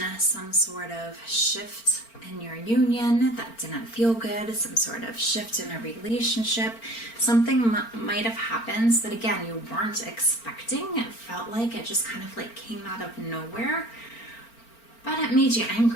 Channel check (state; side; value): late; right; 4.4 ms